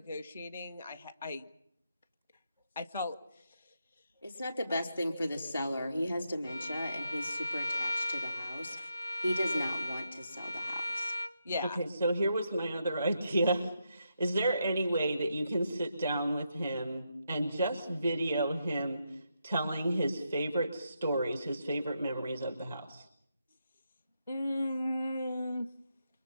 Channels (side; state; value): both; inverted; correlation -0.82